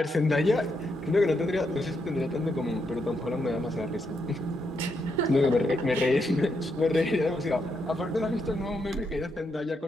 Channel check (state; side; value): normal; both; correlation 0.80